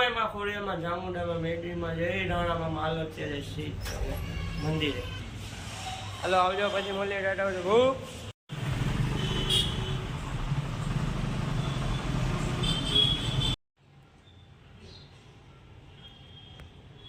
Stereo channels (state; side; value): identical; both; correlation 1.00